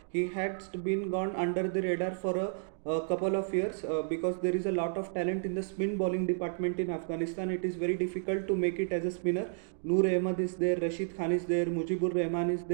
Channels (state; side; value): silent; left; digital silence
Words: He has been gone under the radar for a couple of years because there is a lot of talent in the spin bowling department in Afghanistan. It is very difficult to make it as a spinner. Noor Ahmed is there, Rashid Khan is there, Mujibur Rahman is